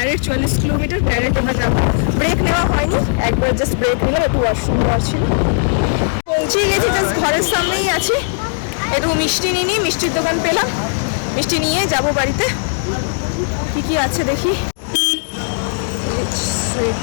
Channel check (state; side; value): silent; right; 68 dB below the other